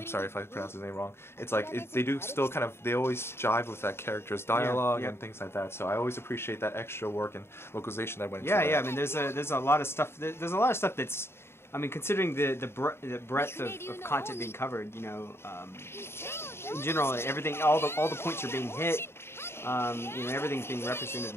sorry if I pronounced his name wrong. It's like they do still they always jive with that character's dialogue and things like that. So I always appreciate that extra work and localization that went into that. Yeah. I mean, there's a lot of stuff. There's a lot of stuff that's, I mean, considering the breadth of content being covered, in general, everything, all the points are being hit. Everything's being represented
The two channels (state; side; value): late; right; 0.12 ms